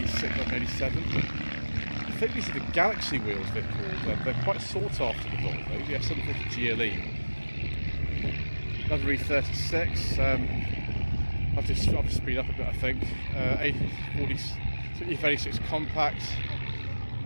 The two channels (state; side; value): inverted; both; correlation -1.00